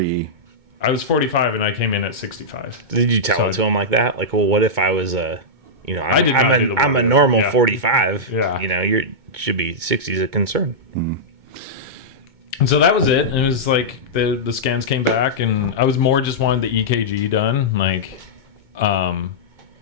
I was 45 and I came in at 65. Did you tell it to him like that? Like, well, what if I was I'm a normal 45. Yeah. You should be 60 is a concern. And so that was it. And it was like the scans came back, and I was more just wanted the EKG done. Like, I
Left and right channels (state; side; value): late; left; 2.2 ms